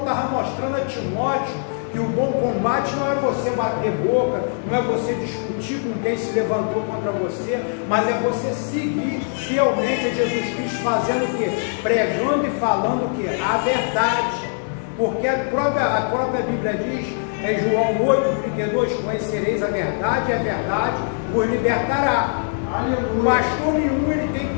mostrando a Timóteo que o bom combate não é você bater boca, não é você discutir com quem se levantou contra você, mas é você seguir fielmente a Jesus Cristo, fazendo o quê? Pregando e falando o quê? A verdade. Porque a própria Bíblia diz, em João 8:32, conhecereis a verdade e a verdade vos libertará. O pastor nenhum ele tem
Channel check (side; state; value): right; silent; 64 dB below the other